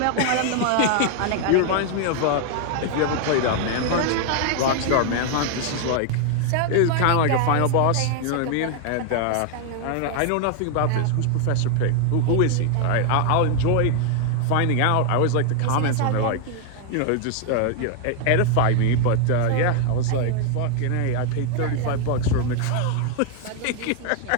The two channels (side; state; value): both; different; correlation 0.00